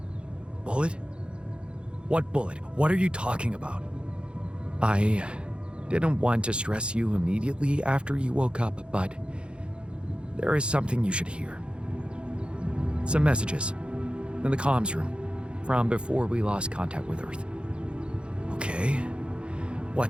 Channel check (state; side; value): late; left; 0.056 ms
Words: Bullet? What bullet? What are you talking about? I didn't want to stress you immediately after you woke up, but there is something you should hear. Some messages in the comms room from before we lost contact with Earth. Okay,